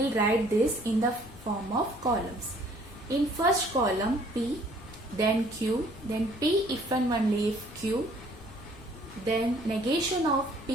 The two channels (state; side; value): noise; left; rumble, 19 dB below the sound